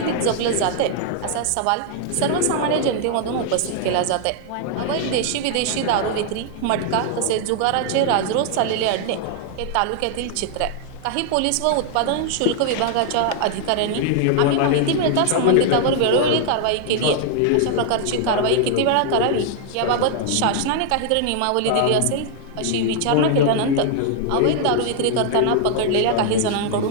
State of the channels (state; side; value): different; both; correlation 0.00